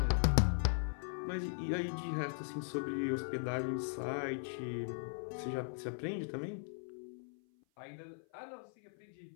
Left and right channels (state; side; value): silent; right; 52 dB below the other